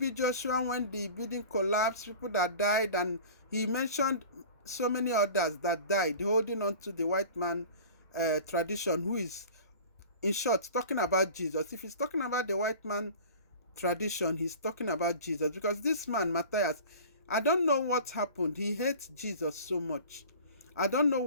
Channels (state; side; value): inverted; both; correlation -0.40